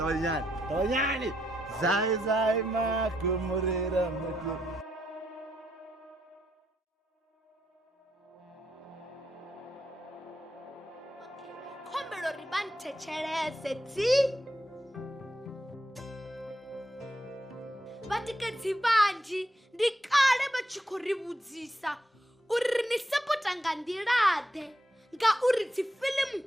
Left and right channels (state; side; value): normal; both; correlation 0.80